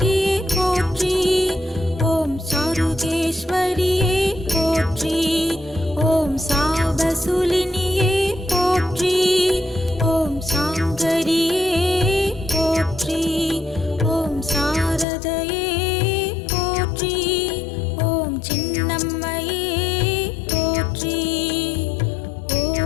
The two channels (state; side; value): drops out; right; at 15.1 s